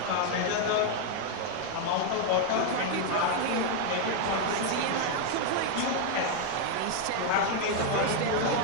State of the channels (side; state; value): both; different; correlation 0.00